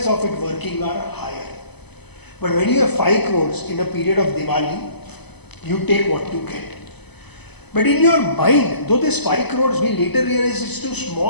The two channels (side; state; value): right; late; 0.99 ms